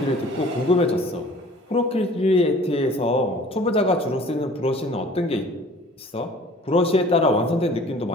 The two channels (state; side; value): normal; both; correlation 0.49